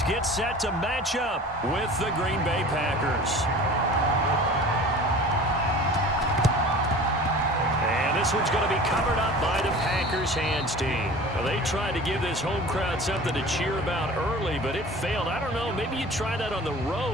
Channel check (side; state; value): both; normal; correlation 0.41